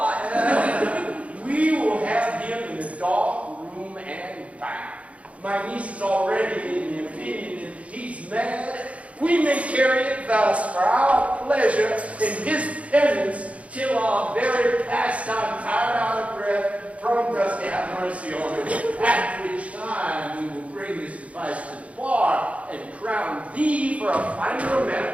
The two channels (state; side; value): late; left; 0.065 ms